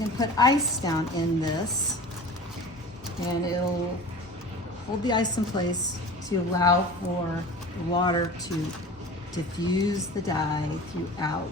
put ice down in this and it'll hold the ice in place to allow for the water to diffuse the dye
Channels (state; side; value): normal; both; correlation 0.37